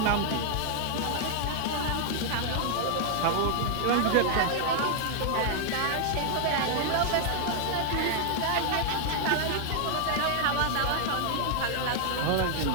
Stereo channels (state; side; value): different; both; correlation 0.00